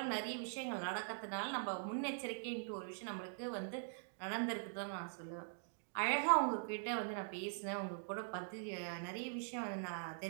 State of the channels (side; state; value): left; silent; digital silence